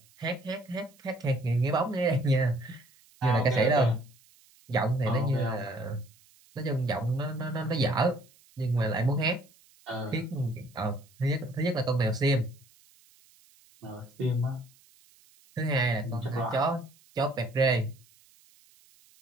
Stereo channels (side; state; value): right; noise; hiss, 29 dB below the sound